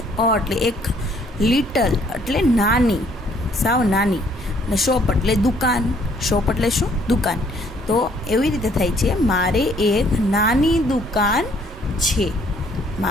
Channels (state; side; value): normal; both; correlation 0.63